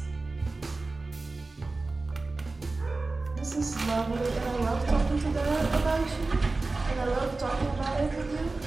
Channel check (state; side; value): quieter; left; 3.4 dB